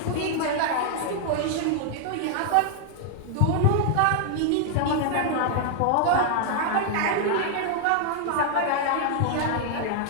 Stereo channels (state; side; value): different; both; correlation 0.00